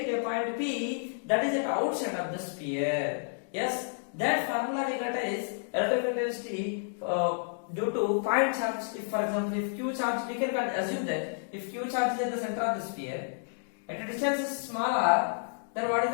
at a point P that is at outside of the sphere. Yes, that formula we got is relative intensity due to point charge. If for example, if Q charge, we can assume that if Q charge is at the center of the sphere, at a distance is smaller, then what is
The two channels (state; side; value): silent; right; digital silence